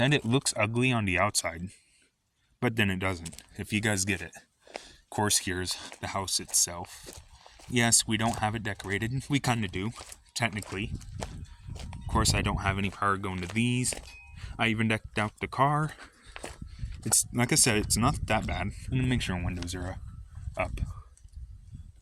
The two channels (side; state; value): both; identical; correlation 1.00